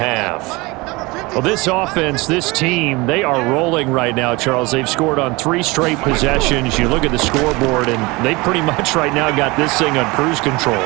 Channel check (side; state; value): left; quieter; 24.0 dB